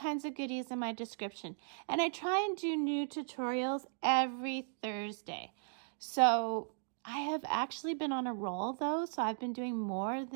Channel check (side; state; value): left; silent; digital silence